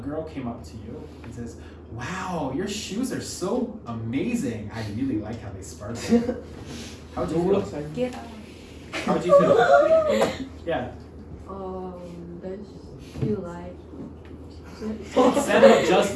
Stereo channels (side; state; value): both; identical; correlation 1.00